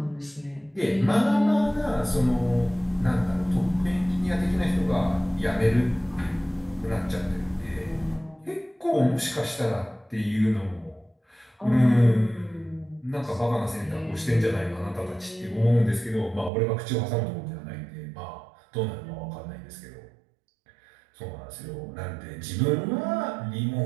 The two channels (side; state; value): left; drops out; at 16.5 s